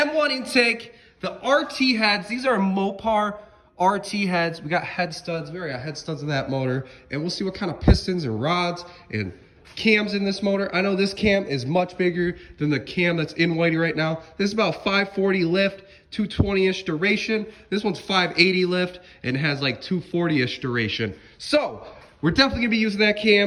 intake, the RT heads. These are Mopar RT heads. We got head studs, head studs in that motor, and we'll see what kind of pistons and rods and cams in this motor. I know this cam is much bigger than the cam that's in Whitey right now. This is about 540 lift, 220-ish duration. This one's 580 lift and has like 240-ish duration. So we're definitely gonna be using that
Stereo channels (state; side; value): identical; both; correlation 1.00